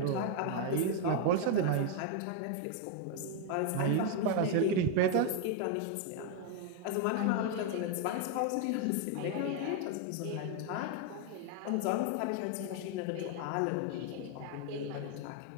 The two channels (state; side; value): different; both; correlation 0.01